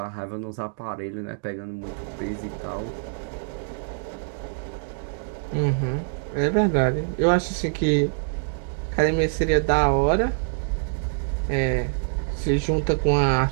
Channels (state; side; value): silent; left; digital silence